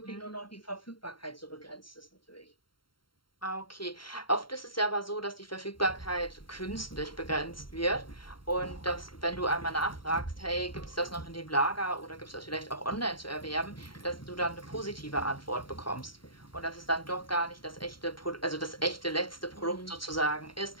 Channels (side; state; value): right; late; 0.73 ms